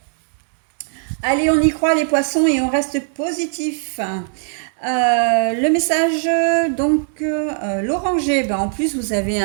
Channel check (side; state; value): left; silent; 66 dB below the other